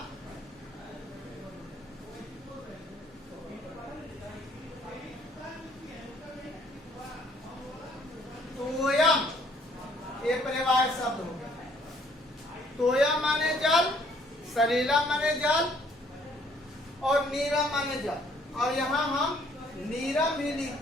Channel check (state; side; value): normal; both; correlation 0.63